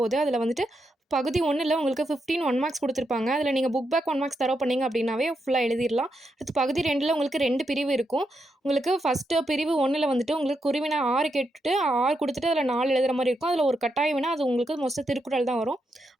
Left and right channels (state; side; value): normal; both; correlation 0.83